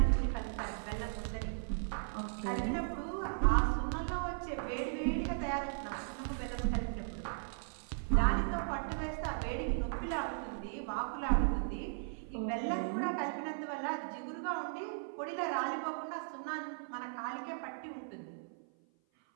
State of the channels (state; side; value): silent; left; 53 dB below the other